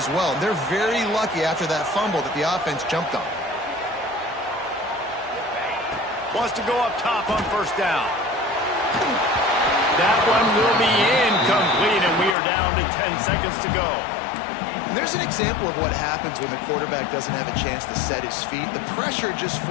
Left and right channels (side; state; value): right; drops out; at 12.4 s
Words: well. They're very lucky after that fumble that the offense jumped on. Wants to go up top on first down. That one will be incomplete, and we are down to 10 seconds to go. And there's an example of what happens when the quarterback doesn't have a chance to set his feet. The pressure just